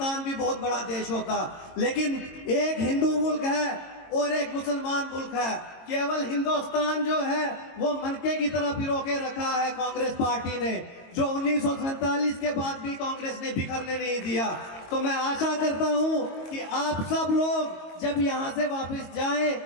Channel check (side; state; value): right; late; 22 ms